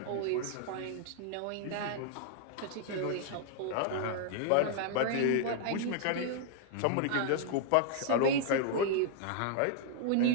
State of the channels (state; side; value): different; both; correlation -0.01